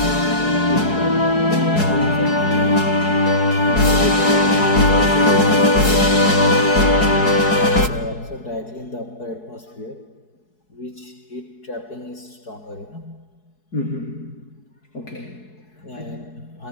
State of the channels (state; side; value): late; right; 4.7 ms